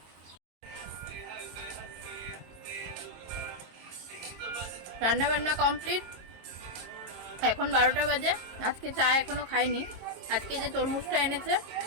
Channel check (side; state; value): left; late; 22 ms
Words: রান্না বান্না কমপ্লিট, এখন 12টা বাজে। আজকে চা এখনো খাইনি। আজকে যে তরমুজটা এনেছে,